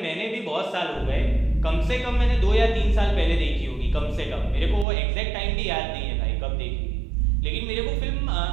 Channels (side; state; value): left; drops out; at 4.9 s